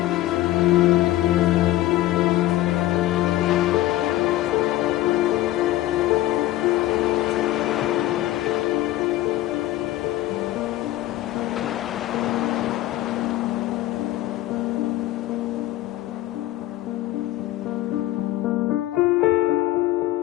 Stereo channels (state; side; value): quieter; right; 15.5 dB